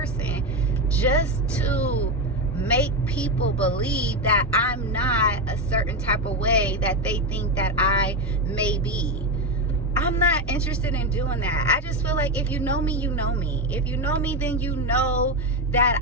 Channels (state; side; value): normal; both; correlation 0.11